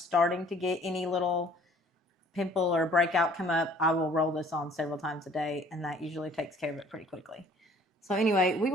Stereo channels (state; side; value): normal; both; correlation 0.55